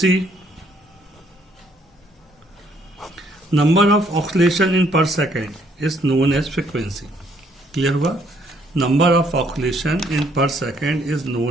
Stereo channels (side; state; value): both; normal; correlation 0.67